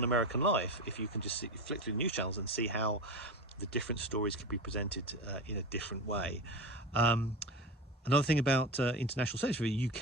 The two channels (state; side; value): normal; both; correlation 0.25